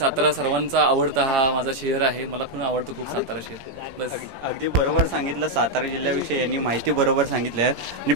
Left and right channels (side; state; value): left; late; 18 ms